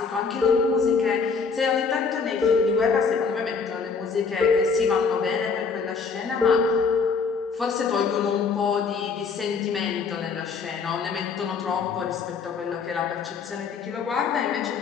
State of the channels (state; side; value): quieter; right; 5.2 dB